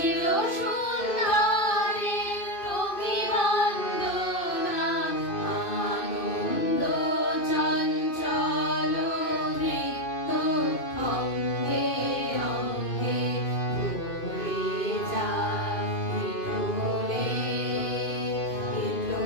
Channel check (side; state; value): right; late; 2.5 ms